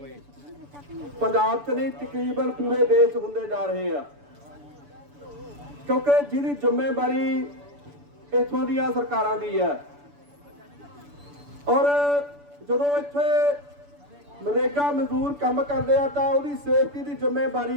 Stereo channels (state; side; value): late; left; 6.9 ms